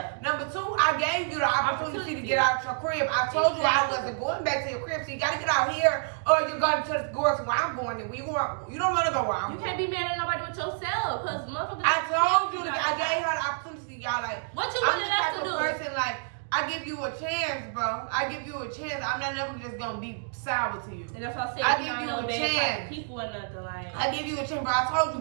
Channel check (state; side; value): silent; left; digital silence